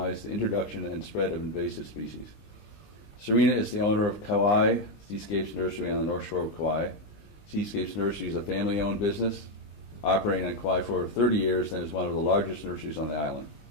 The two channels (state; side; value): late; right; 20 ms